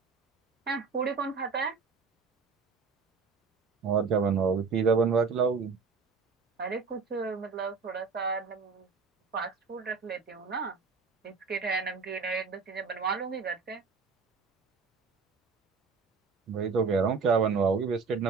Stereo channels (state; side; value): quieter; left; 5.1 dB